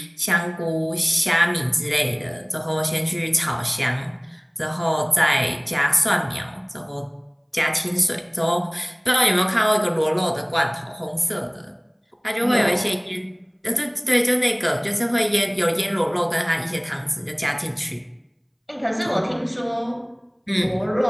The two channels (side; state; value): both; identical; correlation 1.00